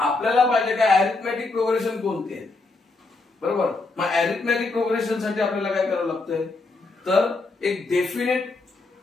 पाहिजे काय अरिथमेटिक प्रोग्रेशन कोणते आहे. बरोबर. मग अरिथमेटिक प्रोग्रेशन साठी आपल्याला काय करावं लागतंय तर एक definite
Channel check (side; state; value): right; quieter; 3.5 dB